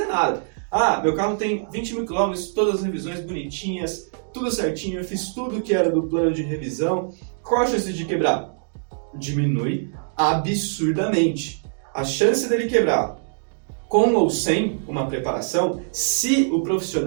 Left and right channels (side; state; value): left; silent; digital silence